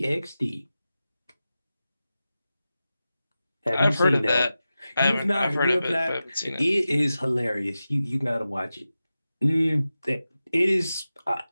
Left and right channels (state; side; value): inverted; both; correlation -0.93